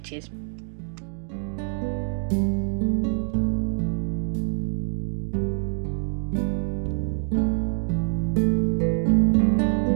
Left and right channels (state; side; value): silent; left; digital silence